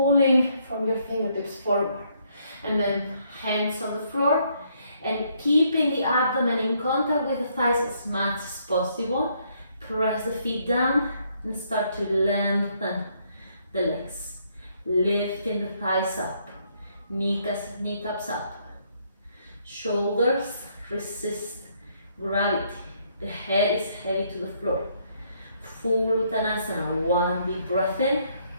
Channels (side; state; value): both; inverted; correlation -0.70